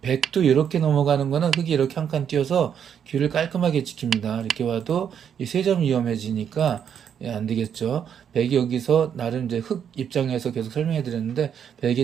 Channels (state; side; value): quieter; left; 8.3 dB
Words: 백도 이렇게 넘어가는 거는 흙이 이렇게 한 칸 띄어서 귀를 깔끔하게 지킵니다. 이렇게 와도 이 세 점 위험해지니까 안 되겠죠. 백이 여기서 나름 이제 흙 입장에서 계속 설명해 드렸는데